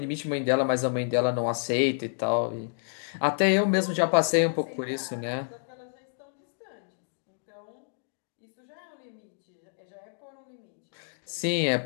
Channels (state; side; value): silent; right; digital silence